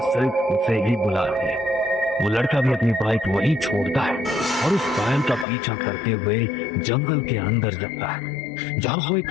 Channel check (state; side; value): drops out; right; at 5.5 s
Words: सिर्फ उसे ही बुला रही है। वो लड़का भी अपनी बाइक वहीं छोड़ता है और उस पायल का पीछा करते हुए जंगल के अंदर जाता है जहाँ वो